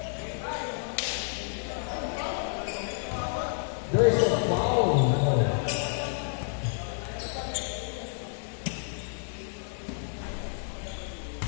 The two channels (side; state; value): right; silent; digital silence